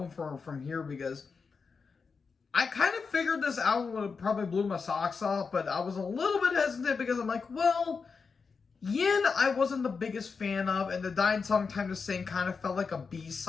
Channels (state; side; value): quieter; right; 5.2 dB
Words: from here, because I kind of figured this album would have probably blew my socks off, but I was a little bit hesitant because I'm like, well, Yin I wasn't the biggest fan of, and the Dying Song Time to Sing kind of felt like a